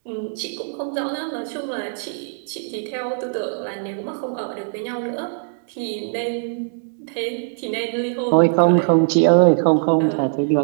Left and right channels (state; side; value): silent; left; digital silence